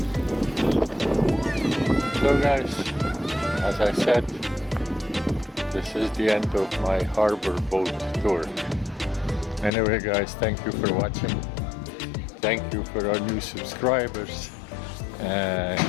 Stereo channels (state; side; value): drops out; right; at 9.7 s